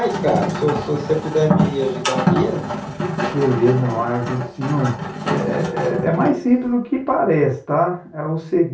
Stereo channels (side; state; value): both; identical; correlation 1.00